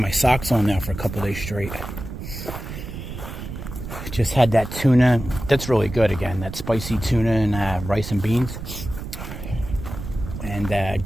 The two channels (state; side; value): noise; right; rumble, 9 dB below the sound